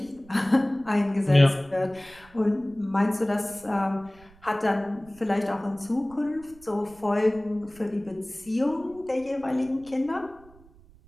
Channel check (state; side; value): noise; right; rumble, 25 dB below the sound